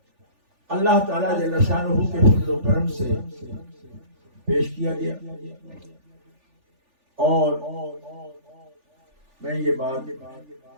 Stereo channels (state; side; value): late; left; 3.4 ms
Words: اللہ تعالیٰ جل شانہ کے فضل و کرم سے پیش کیا گیا، اور میں یہ بات